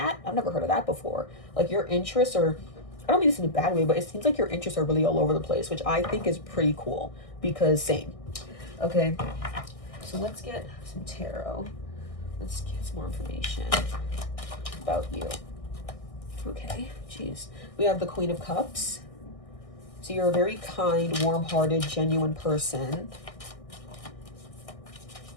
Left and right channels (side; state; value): right; late; 1.6 ms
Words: I've never heard of that before. Like your interests are, I don't mean this in a bad way, but it seems like your interests are really all over the place, which I think is pretty cool because same. Okay, so let's get some tarot. Let's get some more information about you. Okay, geez. We have the Queen of Cups. So you're a very kind, warm-hearted, genuine person.